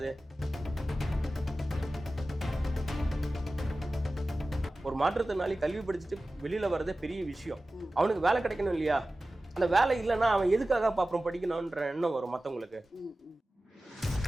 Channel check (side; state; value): both; normal; correlation 0.96